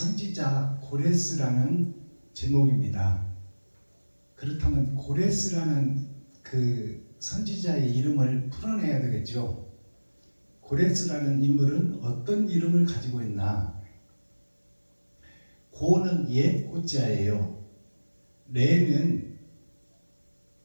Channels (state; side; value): inverted; both; correlation -1.00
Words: 고레스라는 제목입니다. 그렇다면 고레스라는 그 선지자의 이름을 풀어내야 되겠죠. 고레스라는 인물은 어떤 이름을 가지고 있나? 고는 옛 고자예요. 레는